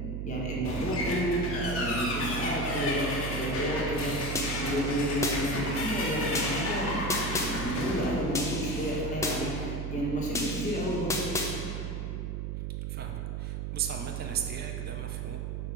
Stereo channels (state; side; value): noise; right; hum, 3 dB below the sound